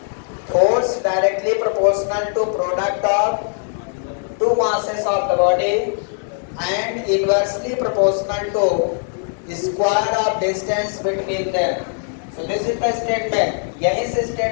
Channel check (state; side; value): silent; right; 59 dB below the other